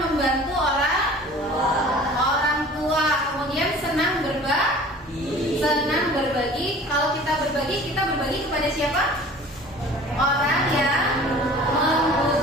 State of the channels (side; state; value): both; normal; correlation 0.45